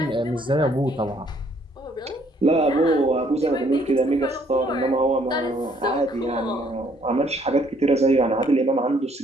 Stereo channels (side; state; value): both; normal; correlation 0.65